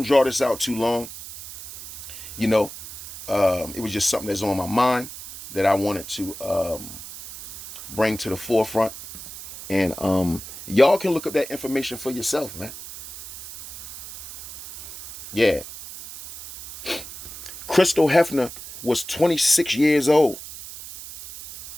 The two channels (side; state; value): right; noise; hiss, 13 dB below the sound